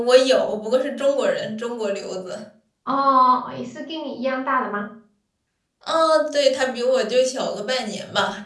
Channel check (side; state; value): both; identical; correlation 1.00